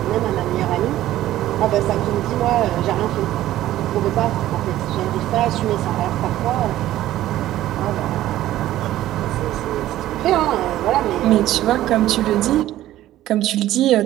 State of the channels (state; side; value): quieter; left; 14.1 dB